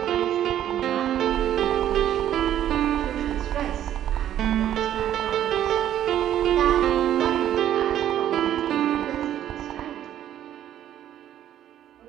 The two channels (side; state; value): left; quieter; 11.3 dB